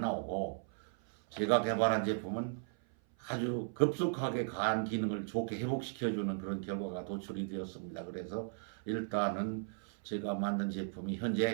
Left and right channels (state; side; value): silent; left; 53 dB below the other